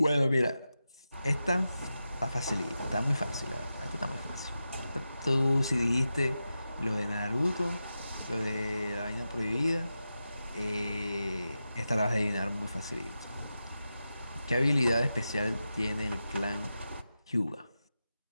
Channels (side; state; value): both; inverted; correlation -0.91